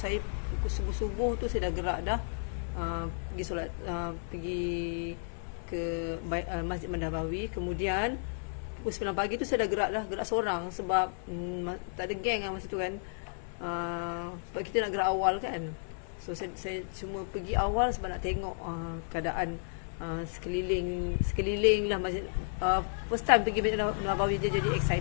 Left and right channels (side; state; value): right; silent; 56 dB below the other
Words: pukul subuh-subuh tu saya dah gerak dah pergi solat, pergi ke Masjid Nabawi. Kemudian pukul 9 pagi tu saya dah gerak seorang sebab tak ada geng masa tu kan. Sebab kita nak gerak awal kan. So saya cuma pergi awal sebab nak tengok keadaan sekeliling lah masjid. First time pergi Masjid Nabawi, jadi